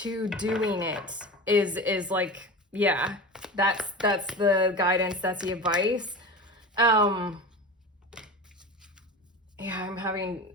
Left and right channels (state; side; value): normal; both; correlation 0.30